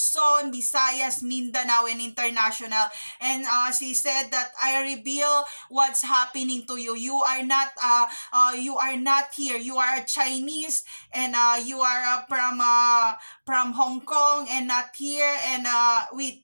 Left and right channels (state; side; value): inverted; both; correlation -1.00